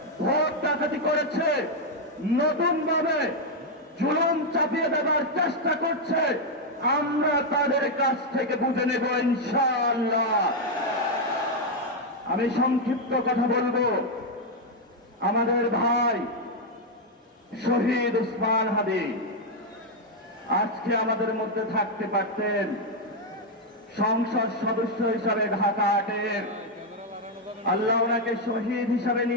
ভোট ডাকাতি করেছে, নতুন ভাবে জুলুম চাপিয়ে দেওয়ার চেষ্টা করছে, আমরা তাদের কাছ থেকে বুঝে নেব ইনশাআল্লাহ। আমি সংক্ষিপ্ত কথা বলবো। আমাদের ভাই শহীদ উসমান হাদি আজকে আমাদের মধ্যে থাকতে পারতেন, সংসদ সদস্য হিসাবে ঢাকা 8-এর আল্লাহ ওনাকে শহীদ হিসাবে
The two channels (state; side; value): normal; both; correlation 0.01